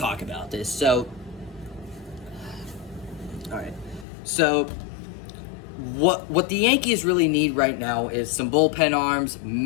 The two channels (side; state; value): right; drops out; at 4.0 s